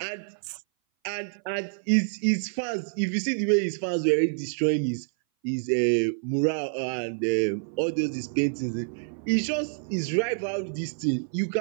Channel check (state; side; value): silent; left; 58 dB below the other